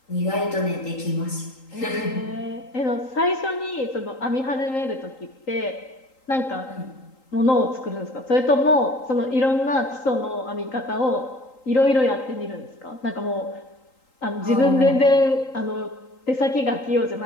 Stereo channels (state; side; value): late; right; 3.8 ms